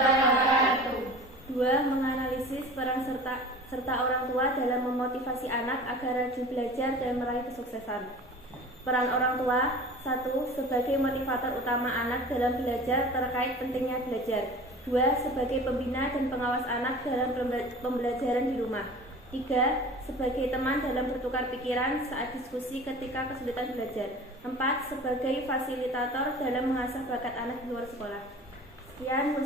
2. Menganalisis peran serta orang tua dalam memotivasi anak agar rajin belajar dan meraih kesuksesan. Peran orang tua: 1. Sebagai motivator utama anak dalam belajar terkait pentingnya belajar. 2. Sebagai pembina dan pengawas anak dalam pembelajaran di rumah. 3. Sebagai teman dalam bertukar pikiran saat diskusi ketika kesulitan belajar. 4. Sebagai fasilitator dalam mengasah bakat anak di luar sekolah. Sekian,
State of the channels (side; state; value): both; normal; correlation 0.40